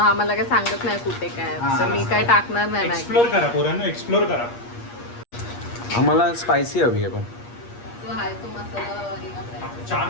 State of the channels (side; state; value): right; late; 8.5 ms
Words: काय सांगत नाही कुठे काय, हां. तर मी काय टाकणार नाही मॅगी। एक्सप्लोर करा पोरांनो, एक्सप्लोर करा। आम्हाला स्पायसी हवी आहे पण। जो आहे तो मसाला